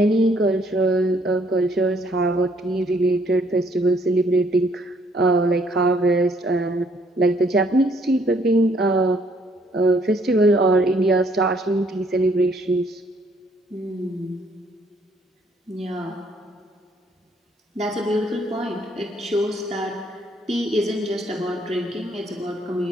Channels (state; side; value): normal; both; correlation 0.66